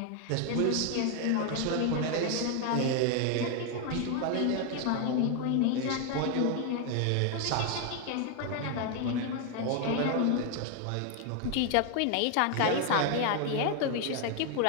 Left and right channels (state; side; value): different; both; correlation 0.01